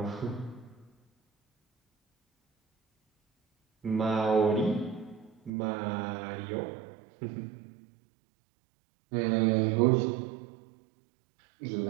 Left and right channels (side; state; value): left; drops out; at 5.5 s